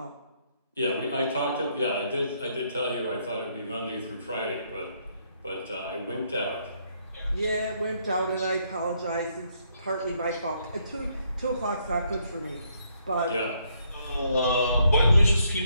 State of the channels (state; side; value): inverted; both; correlation -0.72